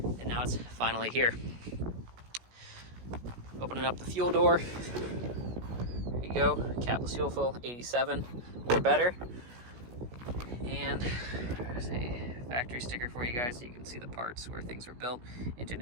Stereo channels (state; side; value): late; left; 16 ms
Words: now it's finally here. Opening up the fuel door. There you go. Capless fuel fill, 87 or better. And there's a factory sticker for you guys so you can see the parts where things were built. Engine